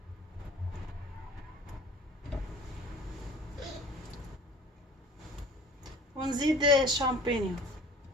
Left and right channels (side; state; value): both; normal; correlation 0.46